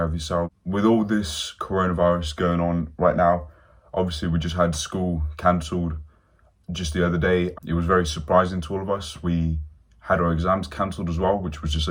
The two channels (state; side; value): identical; both; correlation 1.00